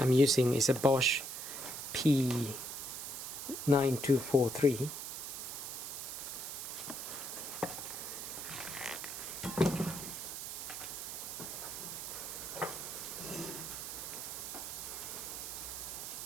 using, is a Bosch P9243.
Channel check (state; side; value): noise; right; hiss, 6 dB below the sound